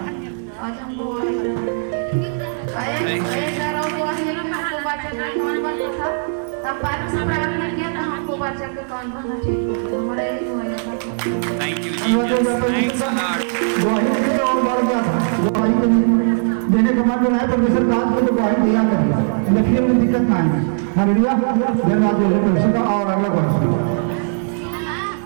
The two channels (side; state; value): left; silent; 66 dB below the other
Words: आज हम गवाही एक गवाही देना हमको बच्चा का कौन बनता था, तब बाद में प्रार्थना किया था हमको बच्चा का कौन बनना ठीक हो गया। हमारा यही हुआ था। Thank you, Jesus. Thanks a lot. गवाही देने और बढ़ गया था, गवाही देने के बाद जो है परमेश्वर काज को तो गवाही दिया करेगा, लेकिन में दिक्कत ना आएगी। हालेलुया, धन्यवाद देते परमेश्वर का। और अगला क्वेश्चन